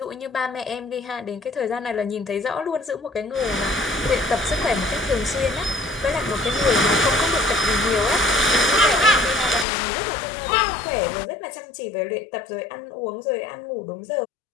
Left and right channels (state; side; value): drops out; right; at 9.7 s